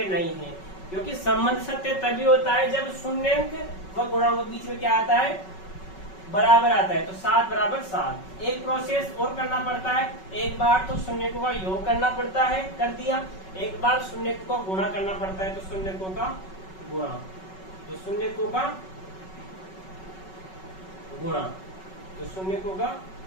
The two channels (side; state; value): right; late; 5.3 ms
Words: नहीं है। क्योंकि संबंध सत्य तभी होता है जब शून्यंक व गुणांक के बीच में क्या आता है, बराबर आता है। तो 7 बराबर 7। एक प्रोसेस और करना पड़ता है, एक बार तो शून्यकों का योग करना पड़ता है, कर दिया, एक बार शून्यकों का गुणा करना पड़ता है, तो शून्यकों का गुणा, तो शून्यकों का गुणा, तो शून्यकों का